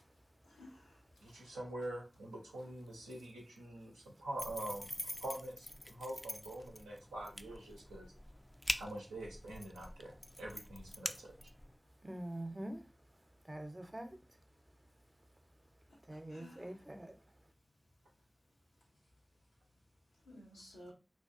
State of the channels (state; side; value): normal; both; correlation 0.95